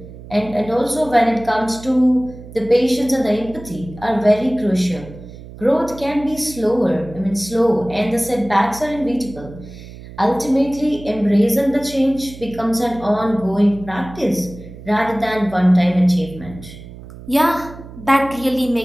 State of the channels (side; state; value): right; noise; hum, 16 dB below the sound